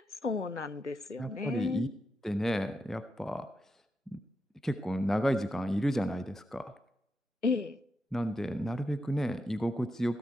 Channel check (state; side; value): normal; both; correlation 0.86